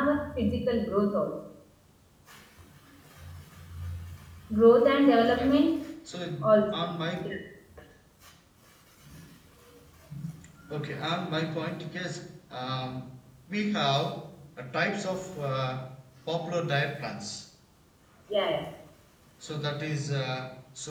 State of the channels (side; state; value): both; identical; correlation 1.00